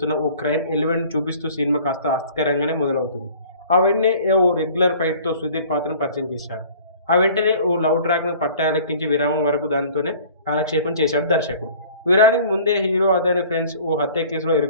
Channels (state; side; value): inverted; both; correlation -0.49